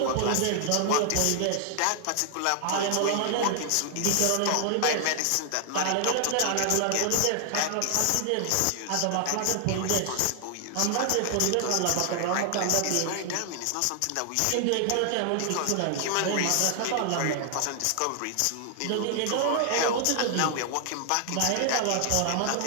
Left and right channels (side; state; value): both; different; correlation 0.00